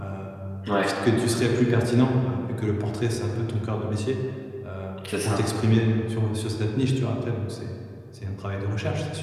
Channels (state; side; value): identical; both; correlation 1.00